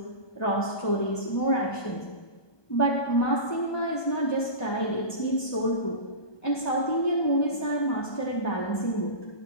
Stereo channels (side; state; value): right; late; 1.2 ms